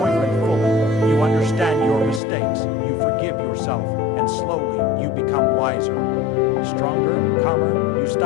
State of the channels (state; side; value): drops out; right; at 2.2 s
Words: fully. You understand your mistakes. You forgive yourself, and slowly you become wiser. Stronger, calmer, you